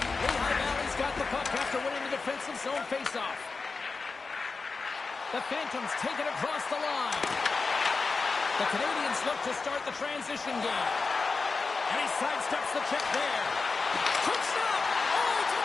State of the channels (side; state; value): right; quieter; 4.3 dB